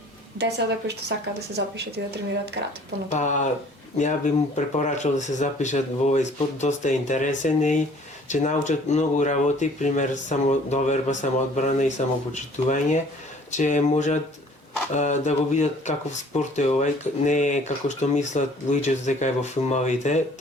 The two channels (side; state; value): both; normal; correlation 0.54